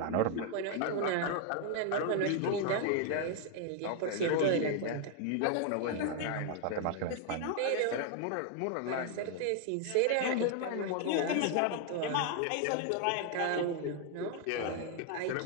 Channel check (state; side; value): different; both; correlation 0.00